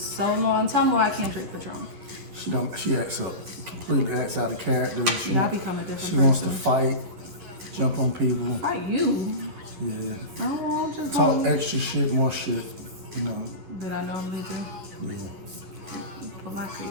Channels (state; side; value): late; left; 11 ms